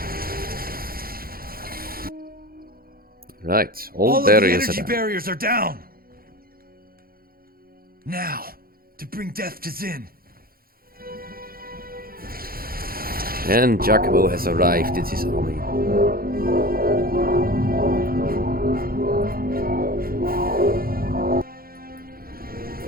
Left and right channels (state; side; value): late; left; 0.43 ms